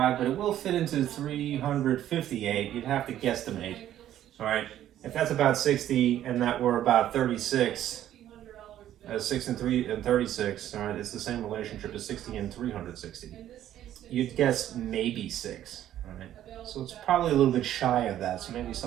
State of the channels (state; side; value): quieter; left; 11.9 dB